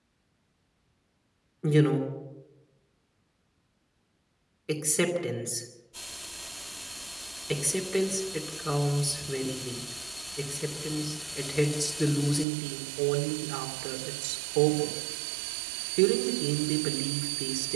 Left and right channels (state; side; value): drops out; left; at 12.5 s